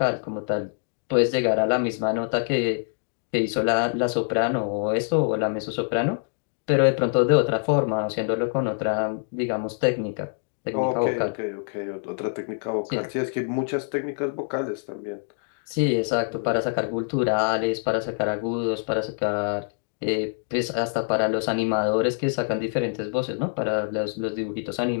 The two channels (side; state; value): right; silent; 62 dB below the other